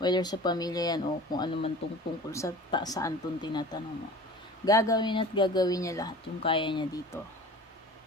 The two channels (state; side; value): normal; both; correlation 0.40